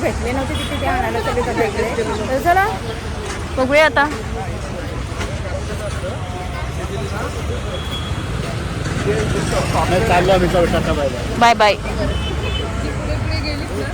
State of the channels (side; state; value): both; identical; correlation 1.00